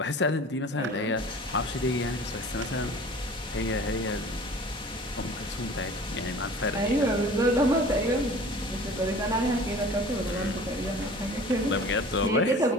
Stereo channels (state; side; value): normal; both; correlation 0.44